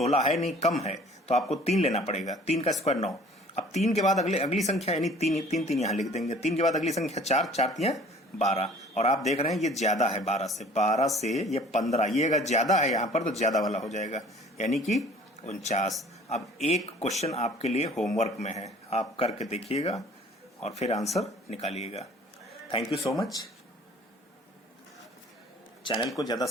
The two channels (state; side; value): normal; both; correlation 0.51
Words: है नहीं, कम है, तो आपको 3 लेना पड़ेगा। 3 का स्क्वायर 9। अब 3 के बाद अगली संख्या, यानी 3 यहां लिख देंगे। 3 के बाद अगली संख्या 4, 4 3 12। और आप देख रहे हैं ये ज्यादा है 12 से ये 15, ये अगर ज्यादा है यहां पर तो ज्यादा वाला हो जाएगा, यानी कि 49। अब एक क्वेश्चन आपके लिए होमवर्क में है, आप करके देखिएगा और फिर आंसर निकालिएगा। Thank you so much. Channel को ज्यादा